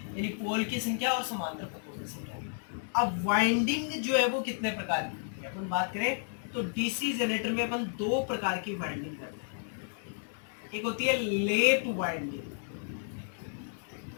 यानी पोल की संख्या और समांतर पथों की संख्या। अब वाइंडिंग जो है वो कितने प्रकार की होती है, अपन बात करें तो डीसी जनरेटर में अपन दो प्रकार की वाइंडिंग करते हैं। एक होती है लेप वाइंडिंग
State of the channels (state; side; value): silent; right; digital silence